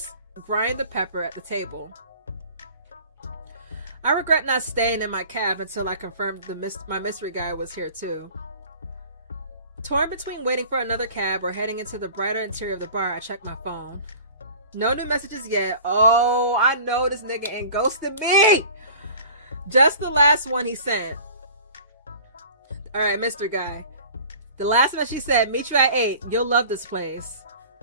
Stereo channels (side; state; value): both; inverted; correlation -0.43